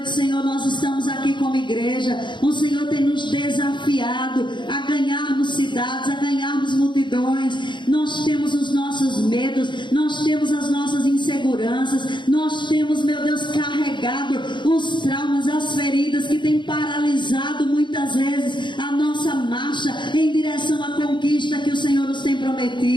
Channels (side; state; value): right; late; 0.23 ms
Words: Senhor, nós estamos aqui como igreja. O Senhor tem nos desafiado a ganharmos cidades, a ganharmos multidões. Nós temos os nossos medos, nós temos as nossas inseguranças, nós temos, meu Deus, carregado os traumas, as feridas que têm paralisado muitas vezes a nossa marcha em direção à conquista que o Senhor nos tem